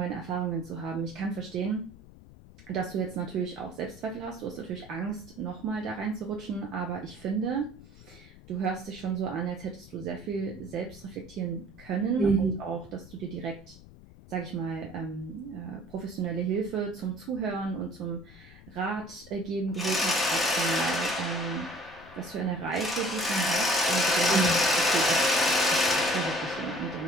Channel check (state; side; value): noise; left; rumble, 20 dB below the sound